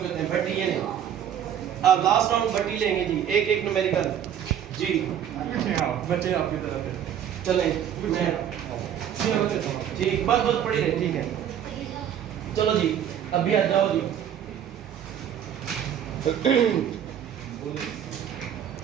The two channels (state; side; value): quieter; left; 9.6 dB